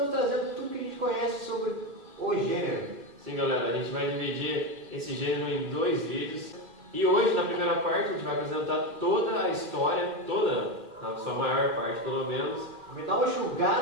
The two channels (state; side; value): late; left; 2.3 ms